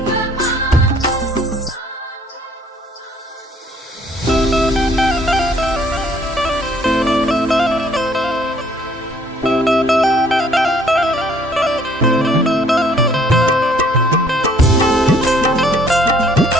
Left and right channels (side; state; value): both; normal; correlation 0.60